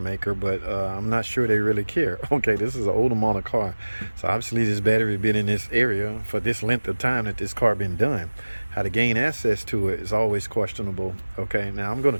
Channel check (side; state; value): both; inverted; correlation -1.00